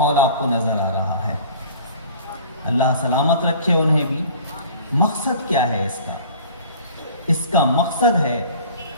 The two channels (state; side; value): inverted; both; correlation -0.46